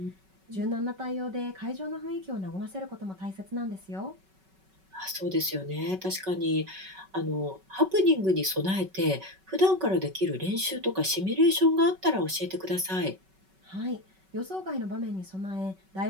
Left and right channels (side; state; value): left; late; 5.3 ms